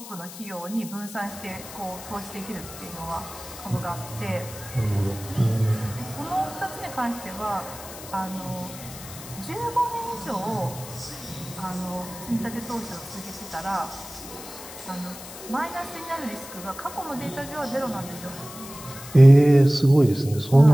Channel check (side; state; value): left; noise; hiss, 14 dB below the sound